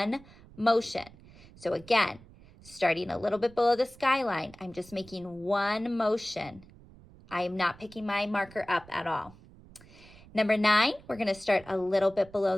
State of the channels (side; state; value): right; noise; rumble, 22 dB below the sound